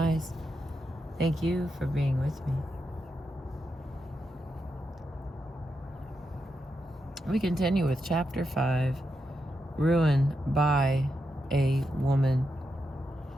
Thank you for being with me. We continue with Chapter 5, Ruin by a Woman,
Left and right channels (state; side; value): normal; both; correlation 0.85